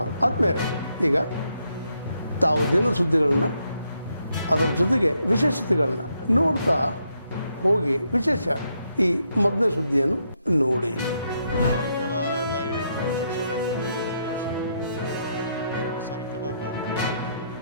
ಆದ್ಮೇಲೆ ಈಗ ತಾವು ದಿನ ಸುದ್ದಿಗಳನ್ನ ಅದರ ಜೊತೆಗೆ ವಿಶೇಷತೆಗಳನ್ನ ನೋಡ್ತಾ ಹೋಗಿ ವಿಶೇಷ ಈ ಮೊದಲನೇ ಸುದ್ದಿಯನ್ನು ನೋಡಿ.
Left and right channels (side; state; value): both; inverted; correlation -0.78